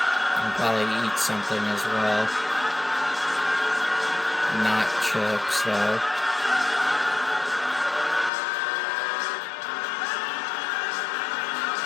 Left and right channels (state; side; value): drops out; right; at 8.3 s